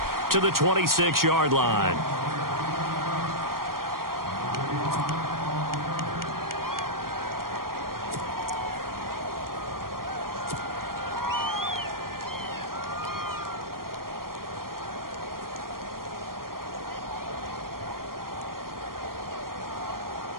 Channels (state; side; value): late; left; 0.92 ms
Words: to the 26-yard line.